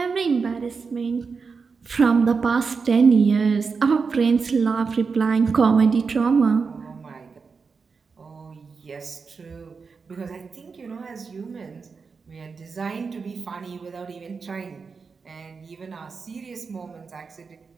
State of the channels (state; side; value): quieter; left; 5.0 dB